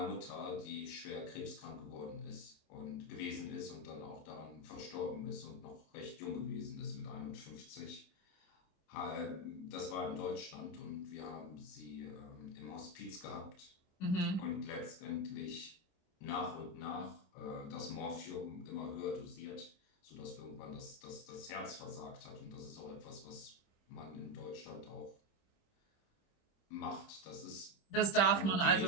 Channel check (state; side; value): late; right; 27 ms